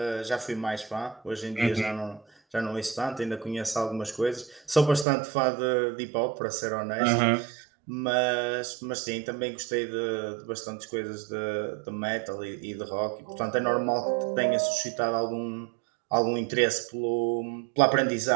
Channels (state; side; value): drops out; left; at 5.1 s